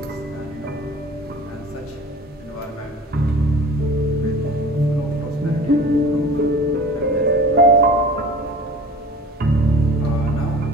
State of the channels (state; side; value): normal; both; correlation 0.42